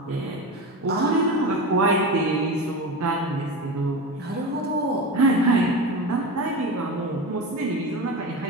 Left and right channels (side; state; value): both; normal; correlation 0.24